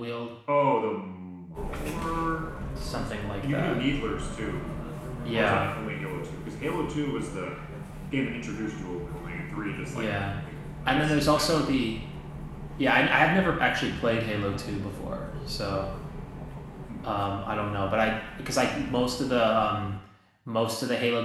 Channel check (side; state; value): both; identical; correlation 1.00